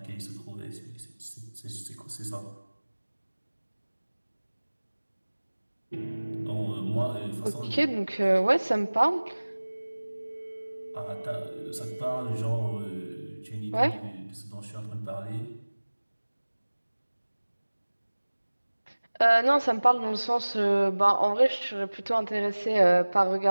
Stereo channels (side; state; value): both; inverted; correlation -1.00